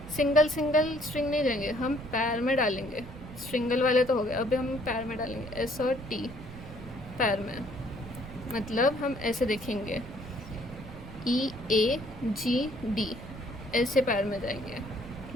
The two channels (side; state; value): right; noise; rumble, 14 dB below the sound